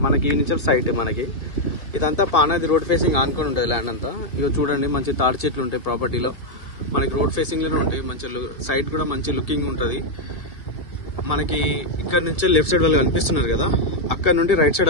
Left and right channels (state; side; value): late; right; 1.6 ms